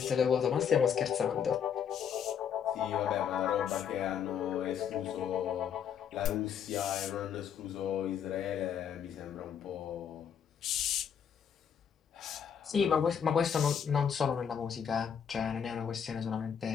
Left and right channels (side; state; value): right; quieter; 7.9 dB